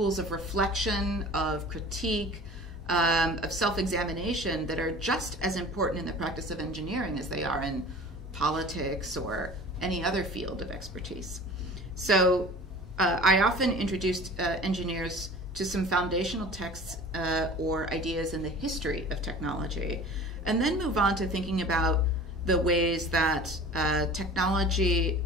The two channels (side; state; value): both; normal; correlation 0.41